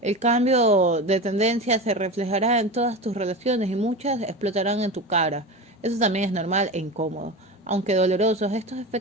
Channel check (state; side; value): normal; both; correlation 0.26